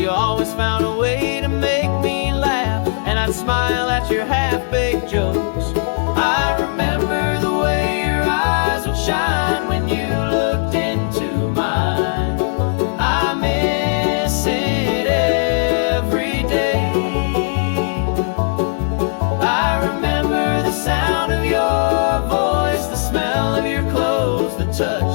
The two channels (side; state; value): right; silent; digital silence